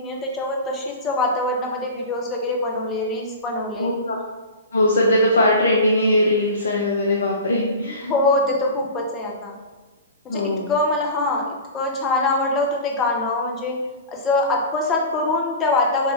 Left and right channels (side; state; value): both; inverted; correlation -0.32